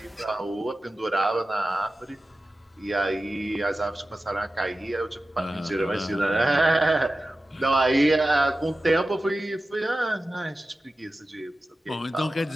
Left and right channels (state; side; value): normal; both; correlation 0.94